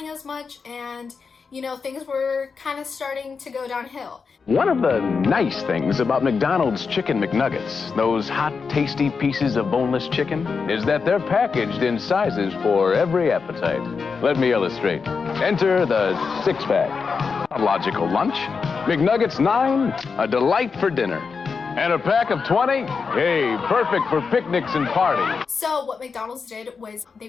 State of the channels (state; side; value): quieter; right; 5.2 dB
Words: as much, and you know, things were kind of starting to go downhill. One of the nice things about McDonald's Chicken McNuggets, those hot, tasty pieces of boneless chicken, is that they're packaged in sizes for every appetite. Let me illustrate. Enter the six-pack. A logical lunch. McNuggets 9, a delight for dinner. And a pack of 20? Hey, perfect for picnics and parties. So what McDonald's did was they